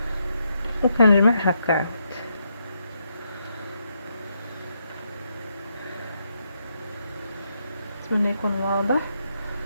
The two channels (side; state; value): both; inverted; correlation -0.79